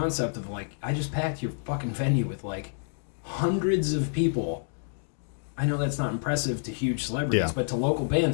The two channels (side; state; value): right; silent; digital silence